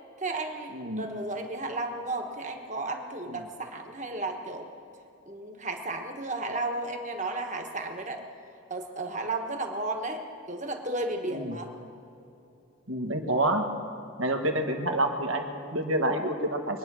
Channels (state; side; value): normal; both; correlation -0.13